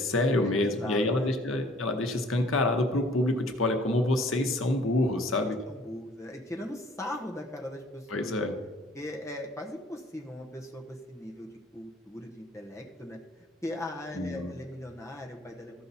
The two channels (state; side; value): normal; both; correlation 0.55